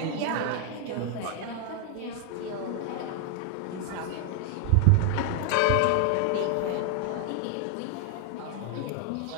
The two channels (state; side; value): different; both; correlation 0.00